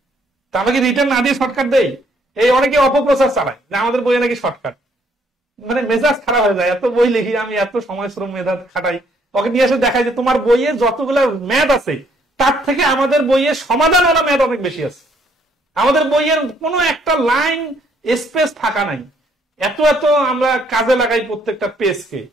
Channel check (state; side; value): normal; both; correlation 0.67